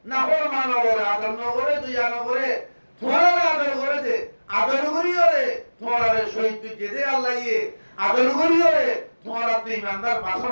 না ফরমান করে আদর না করে দুইয়া না করে তোরা আদর করে দে আদর করিও রে তোরা শহীদ তুই দে আল্লাহ ইয়ে আদর করিও রে তোরা তুই ইমানদার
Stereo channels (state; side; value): inverted; both; correlation -1.00